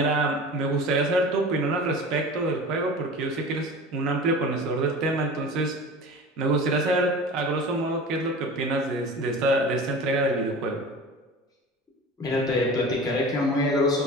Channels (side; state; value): both; normal; correlation 0.36